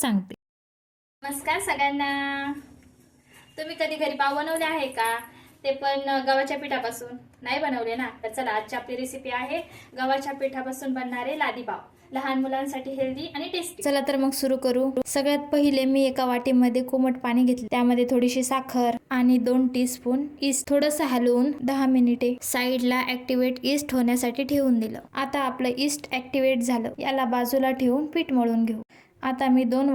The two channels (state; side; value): identical; both; correlation 1.00